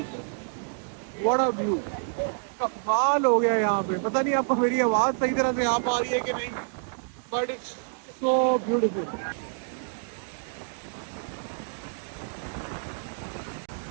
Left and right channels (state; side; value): silent; left; digital silence